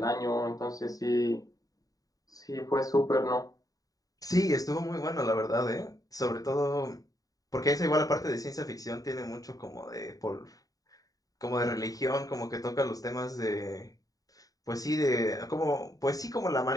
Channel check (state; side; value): late; right; 0.18 ms